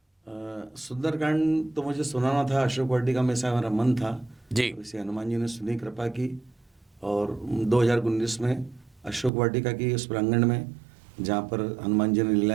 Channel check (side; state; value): left; drops out; at 9.3 s